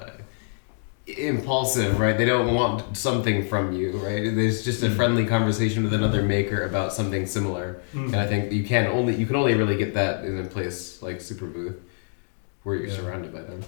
impulsive, right? They don't want something from you, right? There's just a friendly conversation with another maker about something similar, and I think you can only really get that in a place like Superbooth, where you're surrounded by them.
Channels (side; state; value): right; silent; digital silence